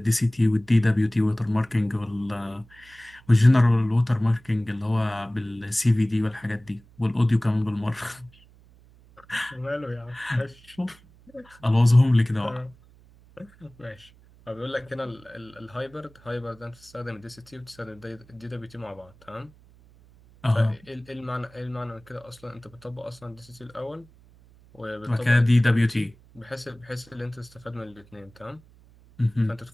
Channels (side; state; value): right; noise; hum, 26 dB below the sound